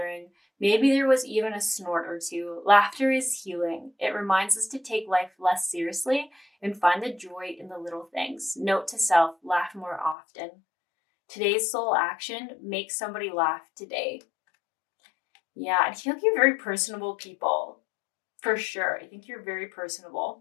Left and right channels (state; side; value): drops out; right; at 10.2 s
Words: Maybe there was even a snort or two. Laughter is healing. It reminds us to take life less seriously and find the joy in the little things. Note to self, laugh more often. Today's soul action, make somebody laugh today. Yeah, I feel like you're very personable people. For sure. I think you're very personable.